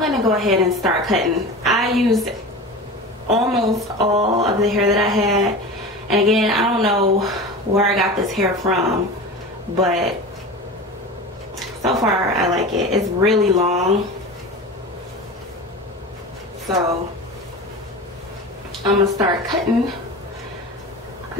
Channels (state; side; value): normal; both; correlation 0.31